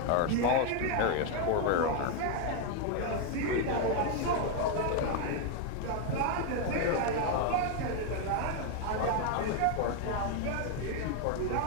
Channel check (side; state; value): both; different; correlation 0.01